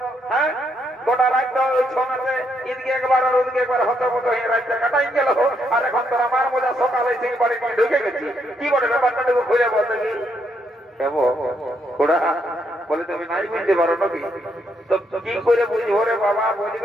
হ্যাঁ গোটা রাত ওই ছনাতে এদিকে একবার আর ওদিকে একবার হত মতো হয়ে রাতটা কাটাই গেল আর এখন তোর আমার মজা সকালে সেই বাড়ি নিয়ে ঢুকে গেছি কি বলে ব্যাপারটাটুকু খুঁজে বলতে কি বলে তুমি নাই বুঝতে পারো নাকি তো কি করে বুঝবো রে বাবা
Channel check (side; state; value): both; normal; correlation 0.76